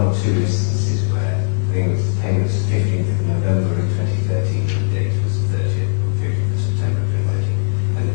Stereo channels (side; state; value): right; silent; 58 dB below the other